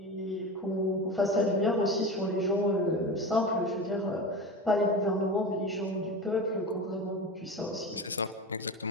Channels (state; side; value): normal; both; correlation 0.27